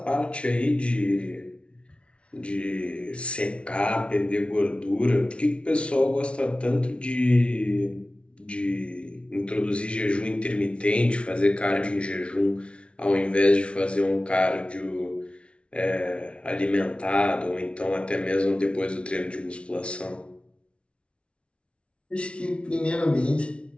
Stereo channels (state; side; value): late; right; 0.060 ms